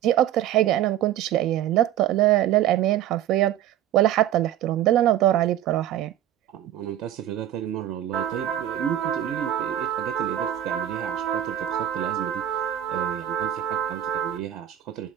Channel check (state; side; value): quieter; left; 11.8 dB